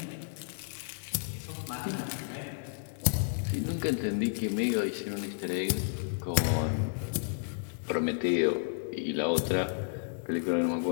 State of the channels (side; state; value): right; silent; digital silence